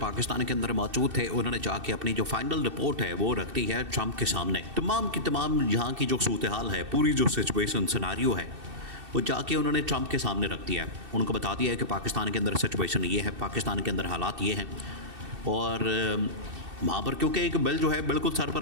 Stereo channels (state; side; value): late; left; 2.7 ms